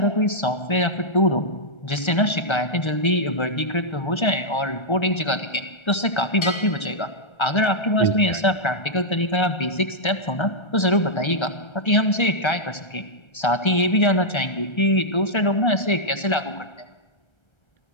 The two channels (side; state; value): right; late; 1.3 ms